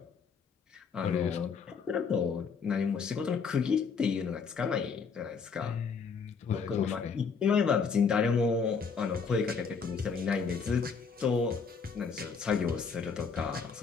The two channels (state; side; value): quieter; right; 5.6 dB